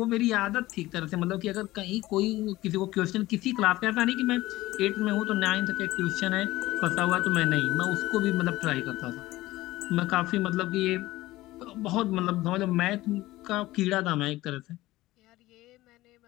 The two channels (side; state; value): right; quieter; 17.6 dB